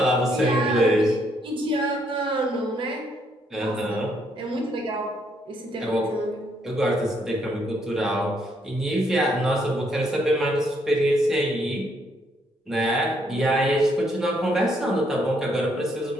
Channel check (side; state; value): both; normal; correlation 0.72